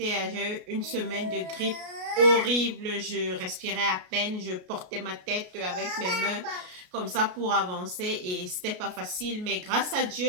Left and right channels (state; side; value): late; left; 33 ms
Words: une semaine de grippe horrible. Je respirais à peine, je portais ma tête avec mes mains comme ça pour avancer et c'était pas facile. Mais grâce à